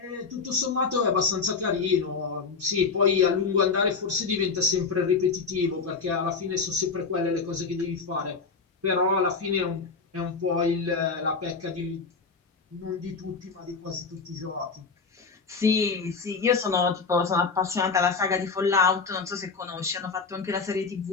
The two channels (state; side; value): quieter; right; 4.9 dB